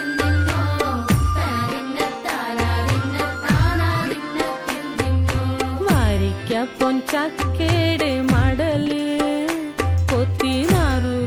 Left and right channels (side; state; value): both; identical; correlation 1.00